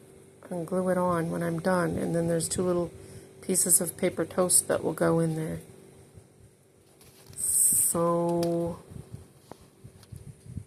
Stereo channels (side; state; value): both; identical; correlation 1.00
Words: and glue it on when I'm done. And then there's 2 little pieces of paper toast that will go in there. So